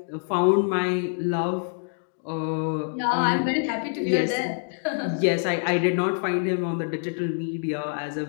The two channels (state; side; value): silent; right; digital silence